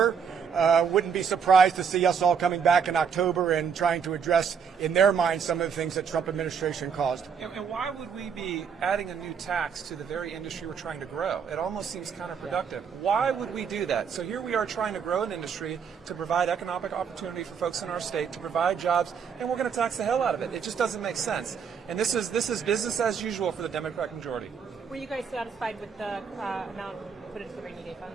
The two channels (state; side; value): quieter; left; 6.7 dB